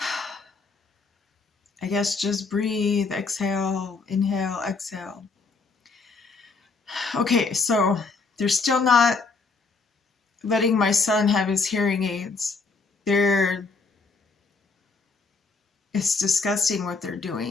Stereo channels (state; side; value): quieter; right; 4.3 dB